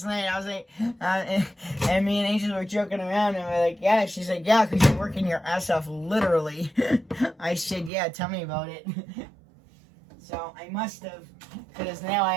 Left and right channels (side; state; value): left; drops out; at 7.9 s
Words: night. I was like, and me and Angel were joking around, and we're like, yeah. She's like, yeah, because you're working your ass off, literally. I said, yeah, tell me about it. So I must have, because now I